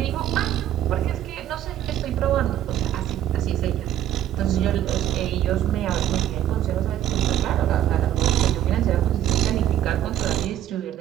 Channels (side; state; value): left; quieter; 11.3 dB